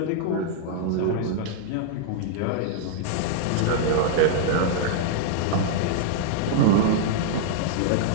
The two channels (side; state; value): both; different; correlation -0.01